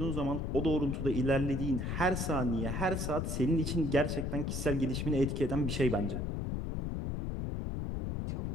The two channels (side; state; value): left; noise; rumble, 1 dB below the sound